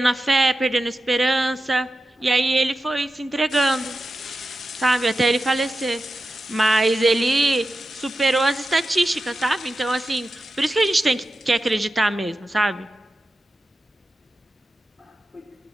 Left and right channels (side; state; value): both; normal; correlation 0.92